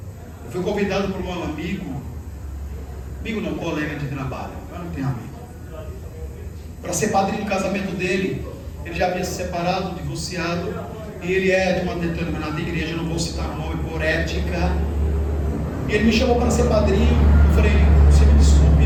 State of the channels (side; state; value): both; identical; correlation 1.00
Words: Eu fui convidado por um amigo não, colega de trabalho, eu não tenho amigo, para ser padrinho do casamento dele. Ele já havia se separado, divorciado, e ele é de uma determinada igreja, eu não vou citar o nome por ética. E ele me chamou para ser padrinho. Eu falei, você me